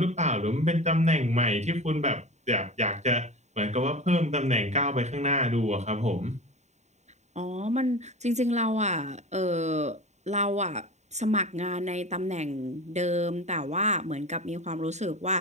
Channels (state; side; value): late; left; 0.33 ms